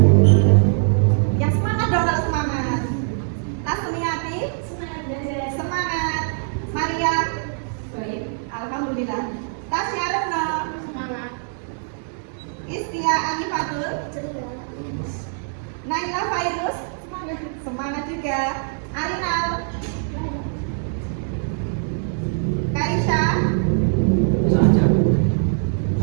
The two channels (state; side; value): silent; left; 64 dB below the other